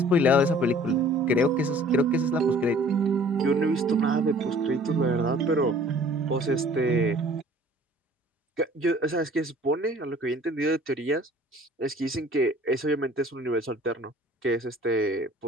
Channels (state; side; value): normal; both; correlation 0.52